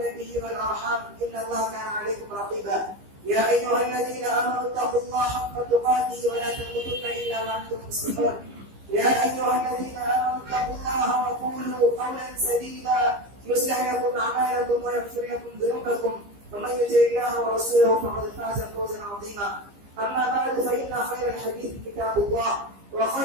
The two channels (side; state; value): left; late; 15 ms